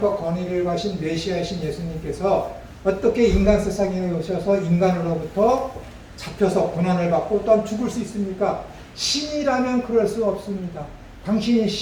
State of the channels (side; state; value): both; identical; correlation 1.00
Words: 권위를 가신 메시아이신 예수님께서 어떻게 인간 세상에 오셔서 인간으로부터 잡혀서 고난을 받고 또한 죽을 수 있습니까? 신이라면 그럴 수 없습니다. 당신이